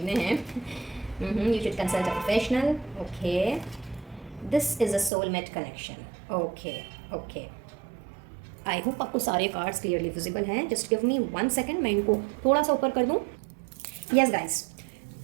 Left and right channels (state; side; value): drops out; left; at 5.1 s